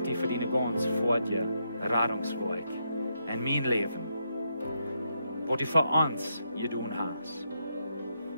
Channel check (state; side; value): inverted; both; correlation -0.80